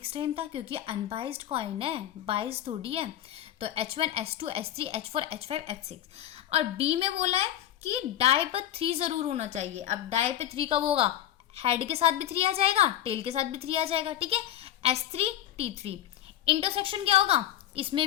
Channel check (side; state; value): right; quieter; 12.0 dB